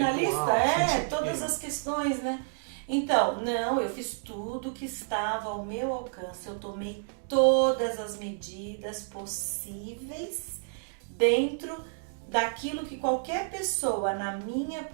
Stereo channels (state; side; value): silent; left; digital silence